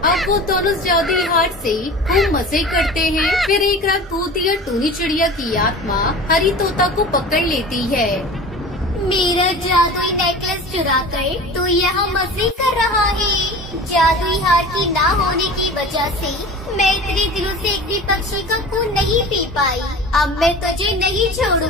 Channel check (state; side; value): normal; both; correlation 0.36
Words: वो दोनों जादुई हार से खूब मजे करते हैं। फिर एक रात भूतिया टूनी चिड़िया की आत्मा हरी तोता को पकड़ लेती है। मेरा जादुई नेकलेस चुरा कर तू यहाँ मजे कर रहा है। जादुई हार की ना होने की वजह से मैं इतने दिनों से एक भी पक्षी का खून नहीं पी पाई। अब मैं तुझे नहीं